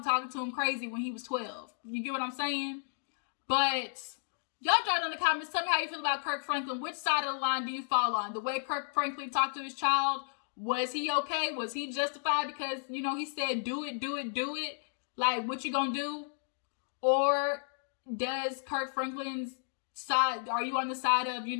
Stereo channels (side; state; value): right; silent; digital silence